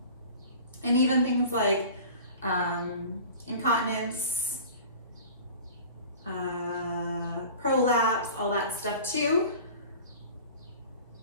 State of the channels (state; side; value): inverted; both; correlation -0.41